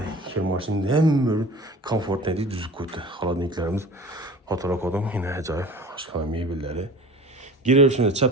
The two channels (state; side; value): normal; both; correlation 0.41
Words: kir mashinamiz hamma komfortli deb tuzib qo'ydi. Xolodilniklarimiz fotorak odam, yine ajoyib oshxona mebellari. Girişinde